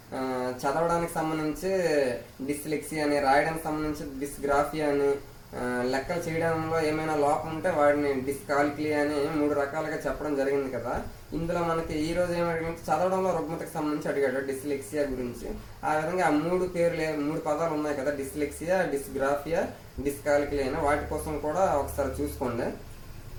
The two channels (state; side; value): identical; both; correlation 1.00